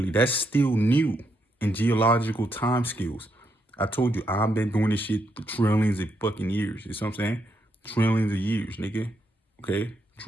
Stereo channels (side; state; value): both; normal; correlation 0.79